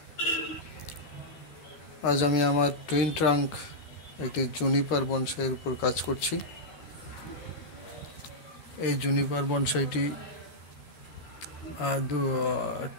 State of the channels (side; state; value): right; late; 14 ms